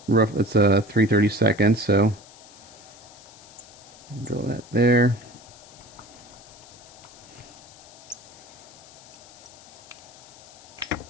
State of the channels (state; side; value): noise; left; hiss, 21 dB below the sound